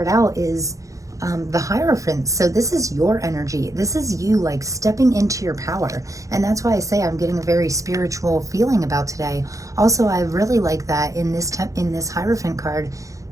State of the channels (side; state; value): left; late; 0.16 ms